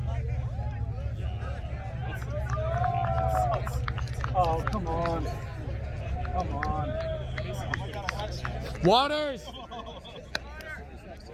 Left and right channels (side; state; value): both; identical; correlation 1.00